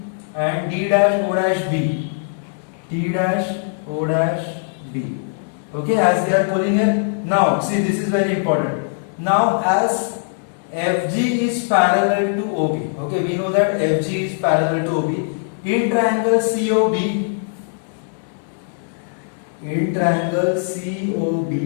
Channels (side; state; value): right; silent; 65 dB below the other